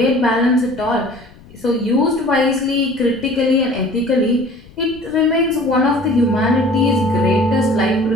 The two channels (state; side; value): noise; left; rumble, 23 dB below the sound